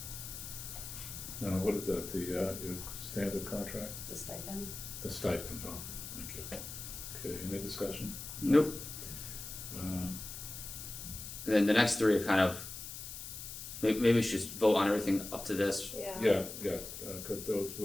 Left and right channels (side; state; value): left; noise; hiss, 9 dB below the sound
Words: Now, what is that, your standard contract? The stipend? The stipend, oh, thank you. Okay, any discussion? Nope. Uh, And then the next three are kind of, maybe we should just vote on everything up to this. Yeah, cause those